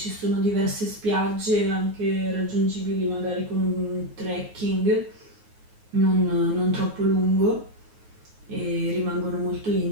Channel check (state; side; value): late; left; 9.4 ms